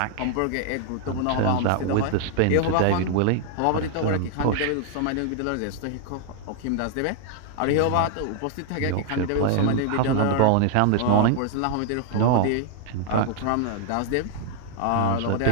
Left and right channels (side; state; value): both; different; correlation 0.00